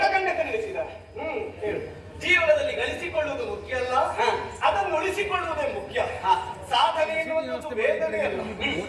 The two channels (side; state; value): both; identical; correlation 1.00